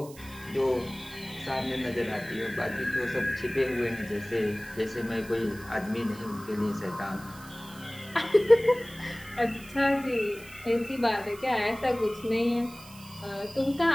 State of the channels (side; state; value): right; noise; hiss, 20 dB below the sound